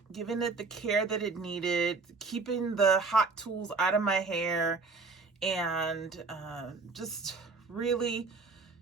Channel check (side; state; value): left; quieter; 4.1 dB